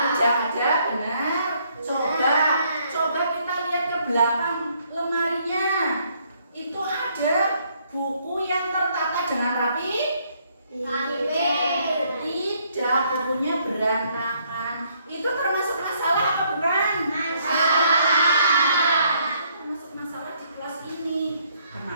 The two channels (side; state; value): both; inverted; correlation -0.69